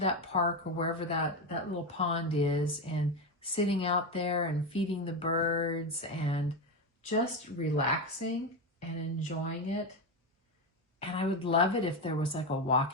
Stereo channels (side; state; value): both; normal; correlation 0.13